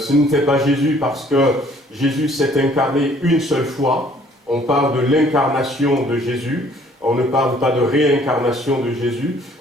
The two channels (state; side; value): normal; both; correlation 0.59